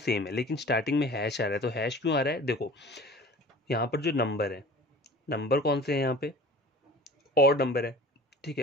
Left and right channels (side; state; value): both; normal; correlation 0.43